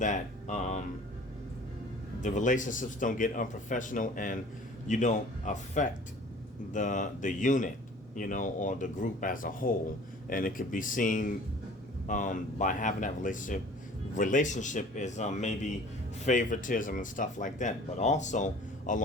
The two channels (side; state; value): both; normal; correlation 0.47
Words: the relationships don't get unprofessional, and you don't affect the unit, or the group as a whole. And it could be seen by having that relationship is maybe favoritism and stuff like that. But also